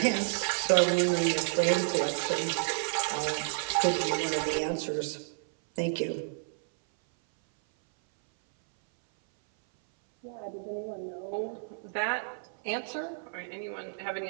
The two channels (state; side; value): silent; left; 58 dB below the other